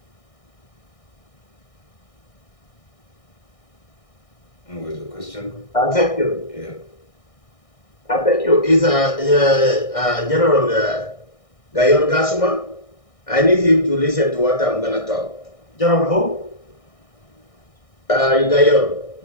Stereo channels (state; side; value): late; right; 1.6 ms